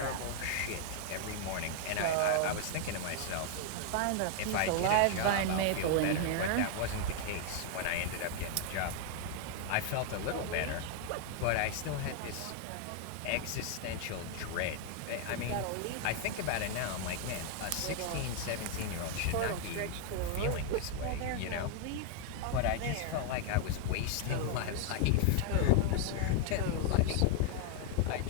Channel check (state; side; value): different; both; correlation 0.00